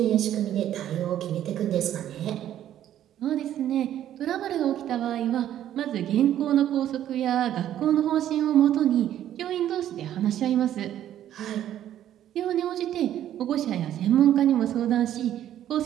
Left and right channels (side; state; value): left; quieter; 11.5 dB